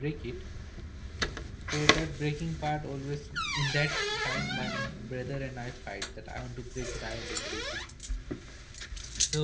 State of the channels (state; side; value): identical; both; correlation 1.00